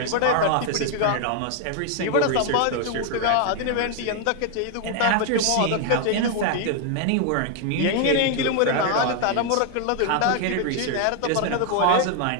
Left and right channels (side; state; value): both; different; correlation 0.00